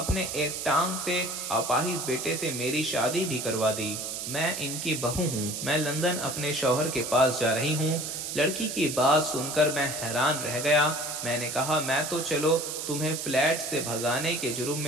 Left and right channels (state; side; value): noise; right; hiss, 5 dB below the sound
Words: ایک ٹانگ سے اپاہج بیٹے سے میری شادی بھی کروا دی۔ میں ان کی بہو ہوں، میں لندن اپنے شوہر کے پاس جا رہی ہوں، لڑکی کی بات سن کر میں حیران رہ گیا۔ میں نے کہا میں تو چلو تمہیں فلیٹ سے بھگانے کے جرم